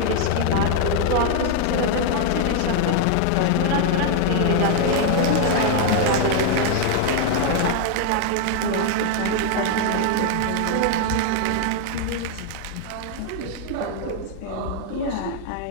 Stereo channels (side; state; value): both; different; correlation 0.00